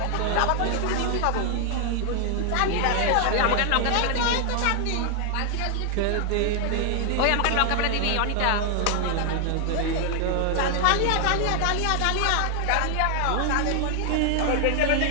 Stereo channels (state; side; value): different; both; correlation 0.00